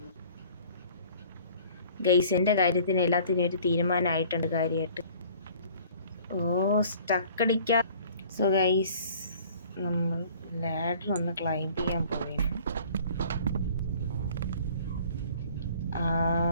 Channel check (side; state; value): both; inverted; correlation -0.51